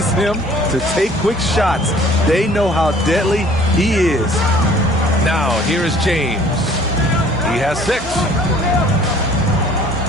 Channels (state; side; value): normal; both; correlation 0.53